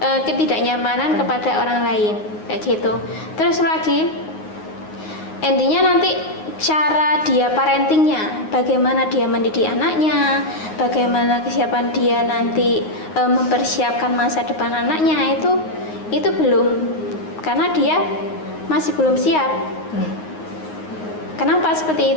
kepada orang lain, kayak gitu. Terus lagi endingnya nanti cara dia parentingnya, bagaimana dia mendidik anaknya, bagaimana kesiapan dia nanti mempersiapkan masa depan anaknya, itu belum, karena dia masih belum siap. Kenapa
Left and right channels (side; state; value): right; late; 9.5 ms